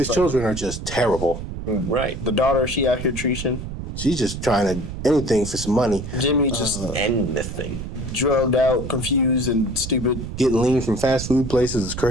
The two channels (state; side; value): noise; right; rumble, 8 dB below the sound